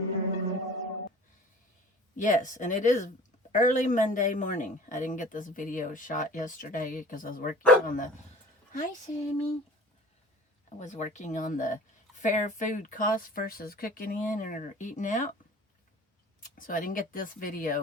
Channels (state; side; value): normal; both; correlation 0.44